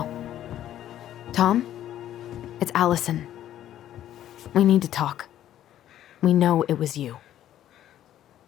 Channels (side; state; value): right; quieter; 11.9 dB